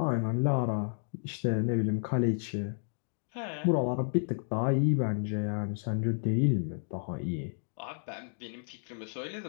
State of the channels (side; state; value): right; silent; digital silence